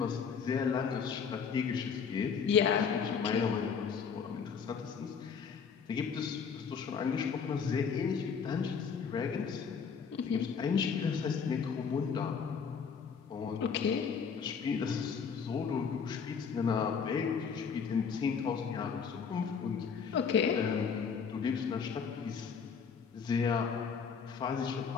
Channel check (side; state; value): right; quieter; 6.3 dB